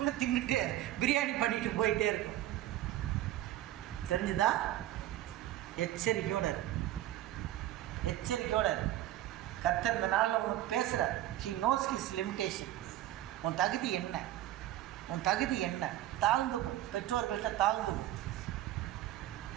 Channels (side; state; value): left; quieter; 13.9 dB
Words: தின்னுட்டு பிரியாணி பண்ணிட்டு போயிட்டே இருக்கும். தெரிஞ்சுதா? எச்சரிக்கையோடு இரு, எச்சரிக்கையோடு இரு. கர்த்தர் இந்த நாளில் உனக்கு பேசுகிறார். He knows his limitation. உன் தகுதி என்ன, உன் தகுதி என்ன? தாழ்ந்துக்கும், பெற்றோர்கள்ட்ட தாழ்ந்துக்கும்.